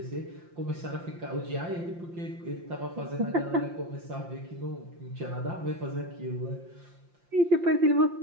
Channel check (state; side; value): late; left; 5.7 ms